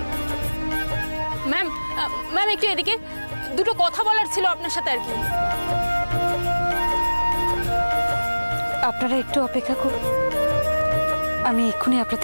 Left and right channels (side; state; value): both; inverted; correlation -1.00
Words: ম্যাম, ম্যাম একটু এদিকে, দুটো কথা বলার ছিল আপনার সাথে আর কি। আপনারা একটু অপেক্ষা করুন, আমি এক্ষুনি